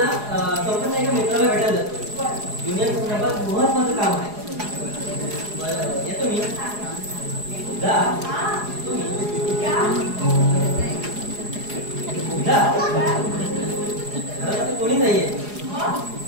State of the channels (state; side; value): late; left; 4.8 ms